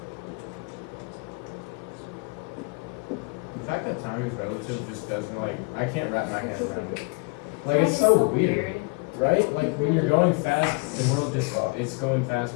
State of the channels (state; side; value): quieter; right; 29.7 dB